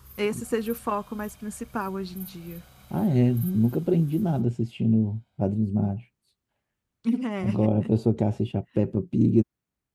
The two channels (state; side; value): identical; both; correlation 1.00